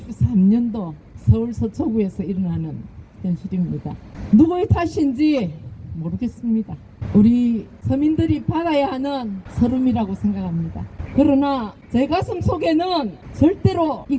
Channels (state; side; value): identical; both; correlation 1.00